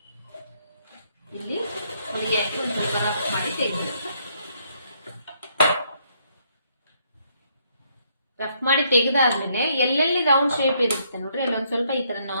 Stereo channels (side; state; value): both; inverted; correlation -0.71